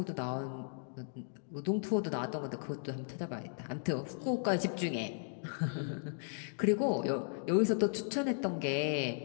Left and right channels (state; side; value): silent; right; digital silence